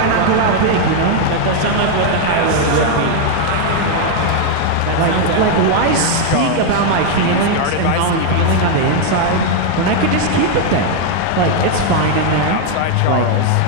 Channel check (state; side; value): different; both; correlation 0.00